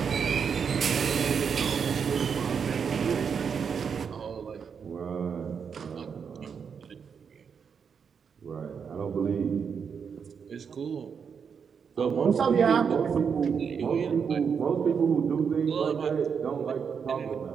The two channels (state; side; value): quieter; left; 6.6 dB